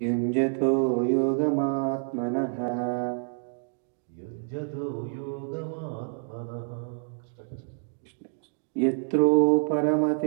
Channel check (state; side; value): silent; left; digital silence